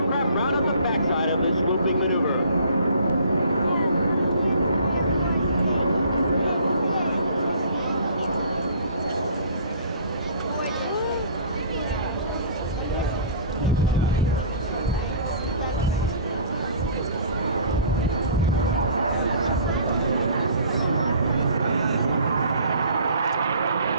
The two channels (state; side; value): inverted; both; correlation -0.49